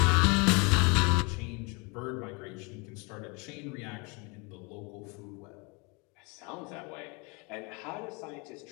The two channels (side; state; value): right; quieter; 30.2 dB